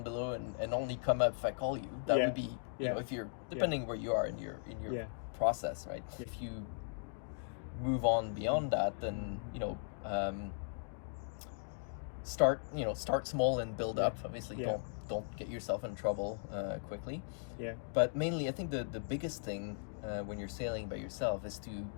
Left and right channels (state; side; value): silent; right; digital silence